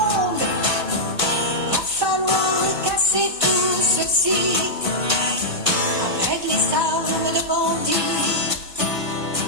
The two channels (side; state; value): left; late; 1.2 ms